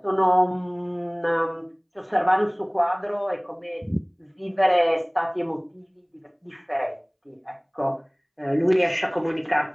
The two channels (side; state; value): both; identical; correlation 1.00